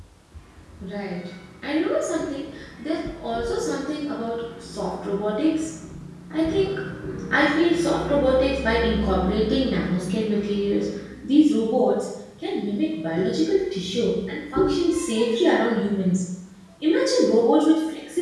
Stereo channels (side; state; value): both; identical; correlation 1.00